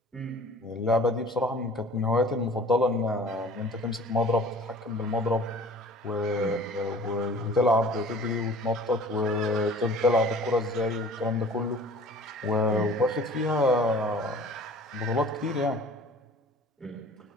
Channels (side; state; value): both; normal; correlation 0.47